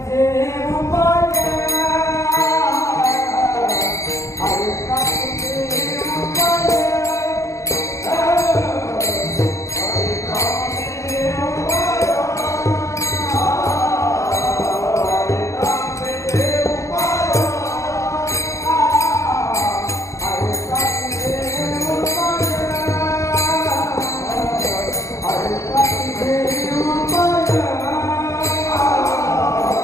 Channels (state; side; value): late; right; 0.15 ms